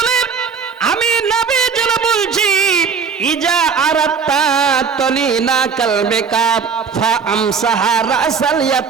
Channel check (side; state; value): left; quieter; 5.9 dB